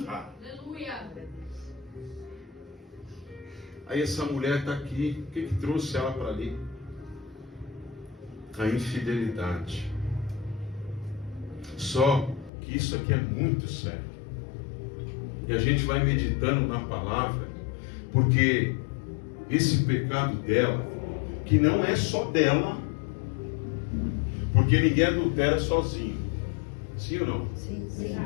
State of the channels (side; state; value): right; drops out; at 12.5 s